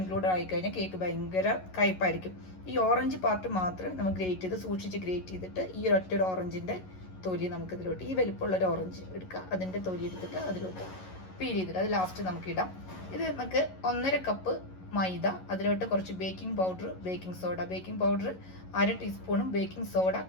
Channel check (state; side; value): late; right; 11 ms